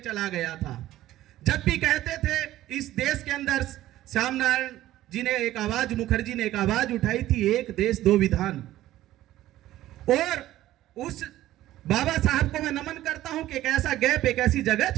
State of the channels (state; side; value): quieter; left; 14.6 dB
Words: गया था। जब भी कहते थे इस देश के अंदर, श्याम नारायण जी ने एक आवाज, मुखर्जी ने एक आवाज उठाई थी, एक देश दो विधान। और उस बाबा साहब को मैं नमन करता हूं कि एक ऐसा गैप, एक ऐसी जगह